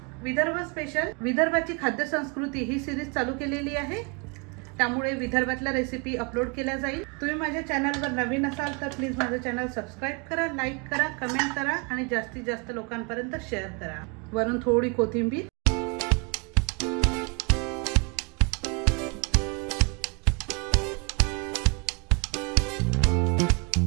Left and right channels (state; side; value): quieter; left; 32.1 dB